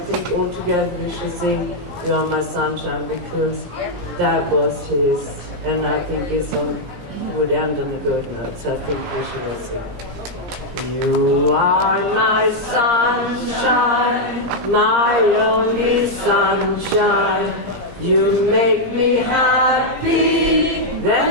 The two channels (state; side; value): late; left; 17 ms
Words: think all together we should sing You Are My Sunshine, because that was his, and I think would end on a good note, so I think we should all sing. You are my sunshine, my only sunshine. You make me happy,